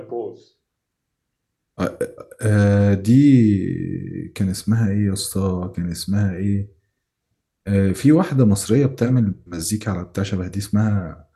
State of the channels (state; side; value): identical; both; correlation 1.00